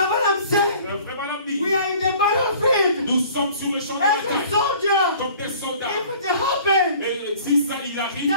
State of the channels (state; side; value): inverted; both; correlation -0.50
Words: saying, vraiment l'homme dit, we are in the battlefield nous sommes sur le champ de as a bataille soldier. comme des soldats. If it happens Et si ça il arrive